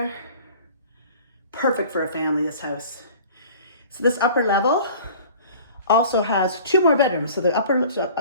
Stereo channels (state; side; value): inverted; both; correlation -0.46